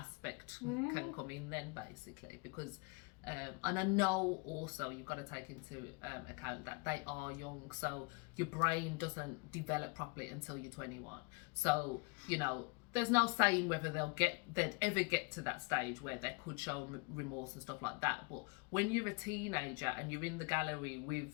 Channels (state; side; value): quieter; right; 30.3 dB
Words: can come in then, basically, because and I know also you've got to take into account that they are young, so your brain doesn't develop properly until you're 21. So there's no saying whether they'd ever get to that stage where they could show remorse and stuff like that. But when you're a teenager and you're in the gallery